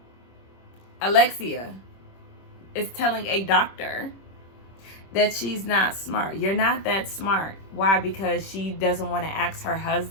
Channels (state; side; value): late; right; 26 ms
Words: Alexia is telling a doctor that she's not smart. You're not that smart. Why? Because she doesn't want to ask her